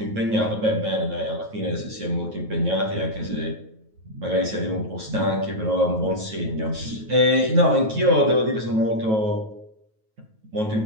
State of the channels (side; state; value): left; late; 9.2 ms